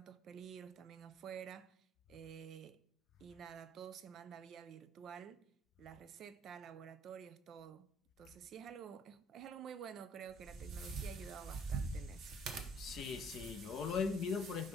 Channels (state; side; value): normal; both; correlation 0.59